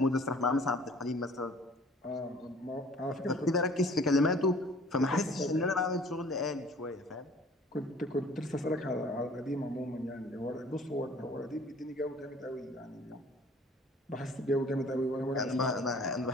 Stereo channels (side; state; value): both; normal; correlation 0.52